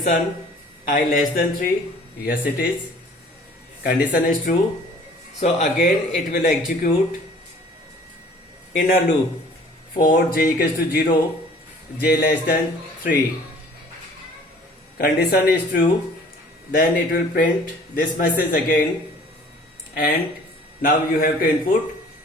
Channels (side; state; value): both; normal; correlation 0.52